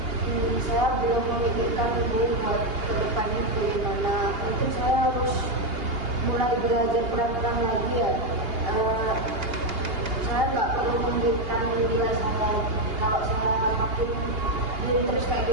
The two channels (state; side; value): late; left; 2.8 ms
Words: Saya belum memikirkan Bu buat ke depan itu karena mungkin saya harus mulai belajar pelan-pelan lagi ya. Saya nggak perlu memberikan nilai sampai kalau saya makin jadi terus kayak